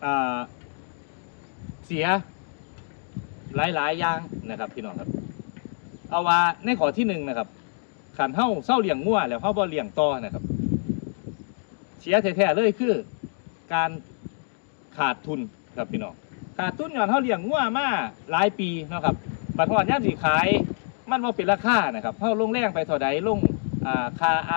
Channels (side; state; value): right; silent; 61 dB below the other